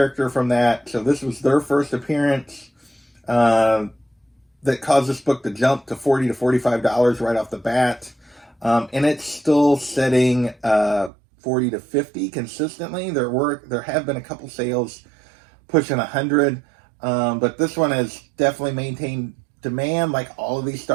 from that. So this was their first appearance that caused this book to jump to $40 to $45 right off the bat. And it's still setting $40 to $50 consistently. There have been a couple sales pushing $100. But this one has definitely maintained demand. Like all of these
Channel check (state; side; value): drops out; left; at 11.1 s